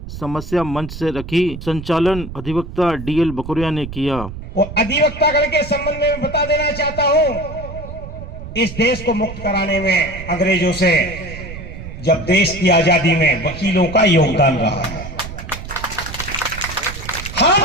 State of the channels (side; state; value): right; noise; rumble, 11 dB below the sound